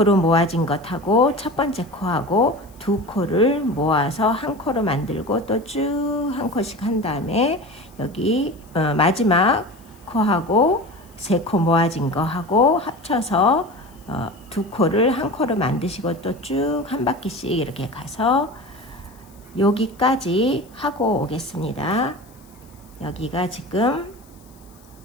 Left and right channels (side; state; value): left; noise; hiss, 28 dB below the sound